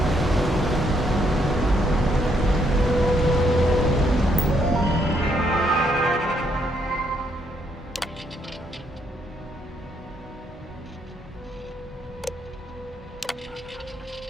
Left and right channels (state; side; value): normal; both; correlation 0.73